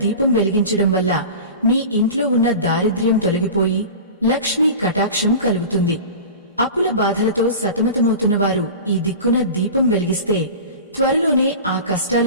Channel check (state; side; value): inverted; both; correlation -0.34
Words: దీపం వెలిగించడం వల్ల మీ ఇంట్లో ఉన్న దారిద్ర్యం తొలగిపోయి లక్ష్మీ కటాక్షం కలుగుతుంది. అప్పుల బాధలతో సతమతమవుతున్నవారు ఈ దిక్కున దీపం వెలిగిస్తే త్వరలోనే ఆ కష్టాల